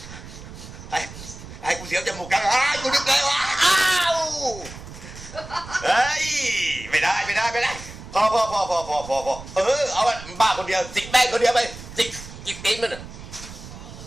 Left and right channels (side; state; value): right; noise; rumble, 14 dB below the sound